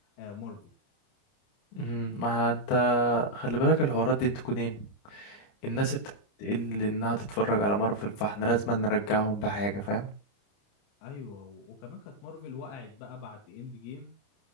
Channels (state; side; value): late; right; 29 ms